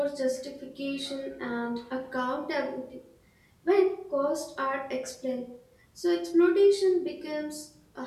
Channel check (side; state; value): both; identical; correlation 1.00